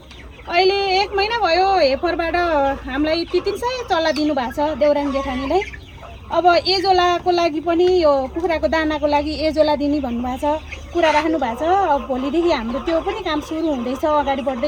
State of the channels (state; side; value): identical; both; correlation 1.00